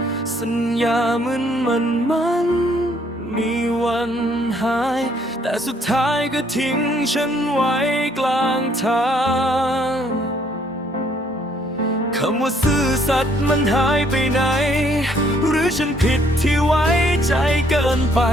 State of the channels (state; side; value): normal; both; correlation 0.65